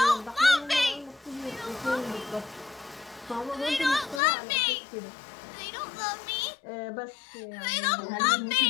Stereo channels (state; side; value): drops out; right; at 4.2 s